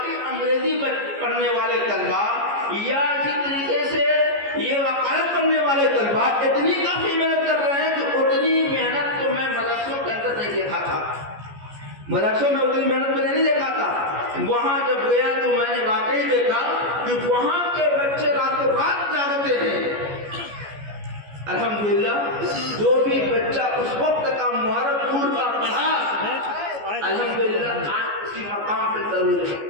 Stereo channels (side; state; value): left; late; 14 ms